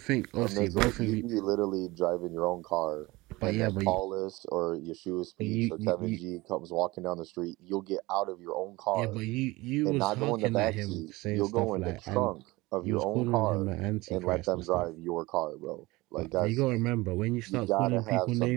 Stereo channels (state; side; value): quieter; left; 21.2 dB